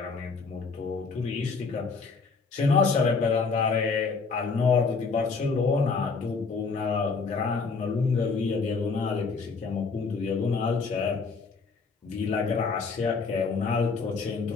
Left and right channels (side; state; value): right; quieter; 4.7 dB